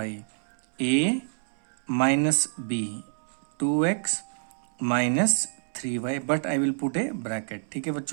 a minus b, 2x minus 3y, but I will put A bracket. ठीक है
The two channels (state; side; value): silent; left; 60 dB below the other